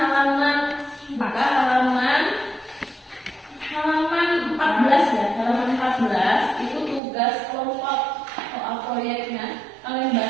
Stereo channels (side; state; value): left; drops out; at 7.0 s